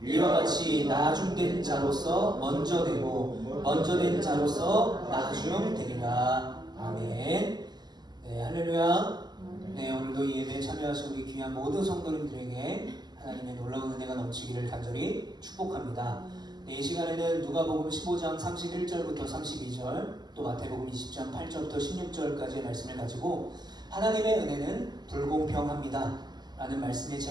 이와 같이 나중된 자로서 먼저 되고 먼저 된 자로서 나중되리라. 아멘. 네, 할렐루야. 네, 오늘도 이 예배에 참여하신 우리 귀한 모든 성도님들에게 하나님의 놀라운 은혜가 넘치기를 간절히 축복합니다. 네, 이 시간에는 누가복음 15장 31절부터 32절, 또 마태복음 20장 8절부터 16절까지의 말씀을 가지고 하나님의 은혜는 불공평합니다 라는 말씀의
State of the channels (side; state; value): left; late; 0.20 ms